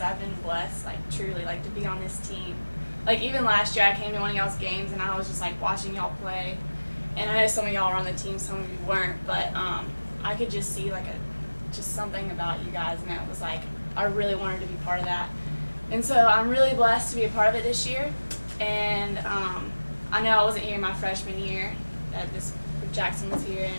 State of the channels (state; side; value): inverted; both; correlation -1.00